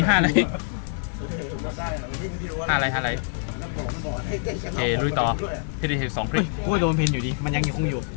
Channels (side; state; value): right; silent; 62 dB below the other